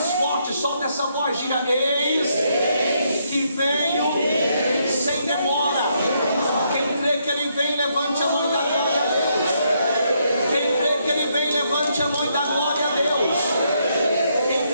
forte, solta essa voz, diga: eis que venho sem demora. Quem crê que ele vem, levante a mão e dá glória a Deus. Quem crê que ele vem, levante a mão e dá glória a Deus.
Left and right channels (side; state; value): both; inverted; correlation -0.75